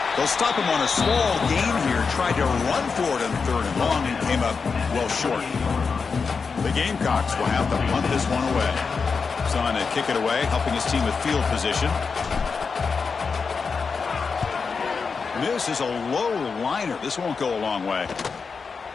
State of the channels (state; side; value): quieter; right; 5.2 dB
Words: They'll stop him on a small gain here. Tried to run for it on 3rd and long and came up well short. The Gamecocks will have to punt this one away. Trying to kick it away, helping his team with field position. This is a low liner. This won't go a long way.